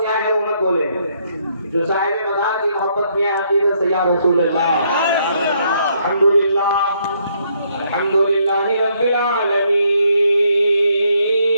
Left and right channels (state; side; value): inverted; both; correlation -0.71